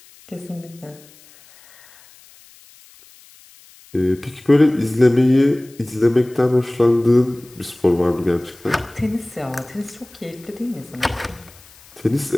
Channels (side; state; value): left; noise; hiss, 25 dB below the sound